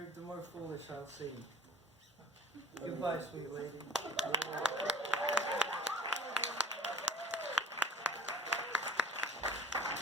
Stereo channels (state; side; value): normal; both; correlation 0.42